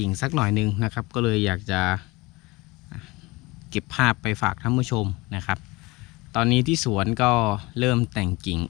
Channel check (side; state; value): right; quieter; 23.1 dB